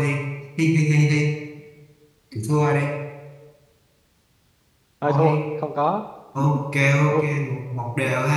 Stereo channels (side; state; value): both; identical; correlation 1.00